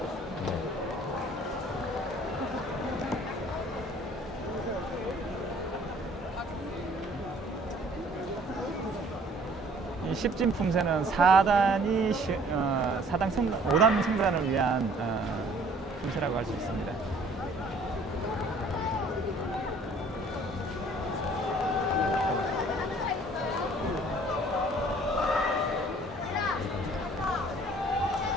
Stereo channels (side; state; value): both; normal; correlation 0.55